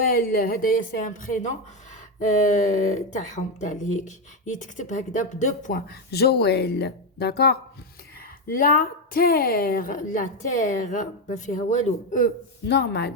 هدايا سي ان برينون تاعهم تاع الهيك يتكتب هكذا ب2 بوين جويل. داكور la terre ما فيها والو normal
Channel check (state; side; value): normal; both; correlation 0.08